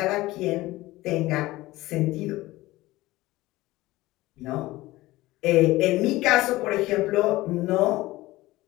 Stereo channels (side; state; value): right; quieter; 18.5 dB